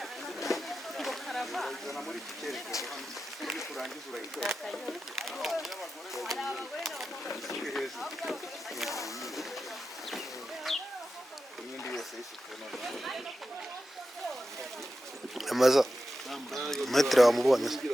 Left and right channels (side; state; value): both; normal; correlation 0.91